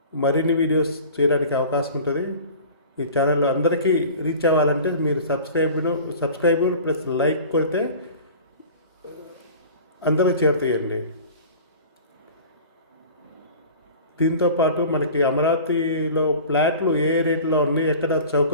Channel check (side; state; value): both; inverted; correlation -0.41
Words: మరిన్ని వీడియోస్ చేయడానికి అవకాశం ఉంటుంది. ఈ ఛానల్ అందరికీ రీచ్ అవ్వాలంటే మీరు సబ్స్క్రైబ్ ప్లస్ లైక్ కొడితే అందరూ చేరుతాయండి. దీంతోపాటు మనకి అమరావతిలో ఫ్లాట్లు ఏ రేట్లో ఉన్నాయి, ఎక్కడ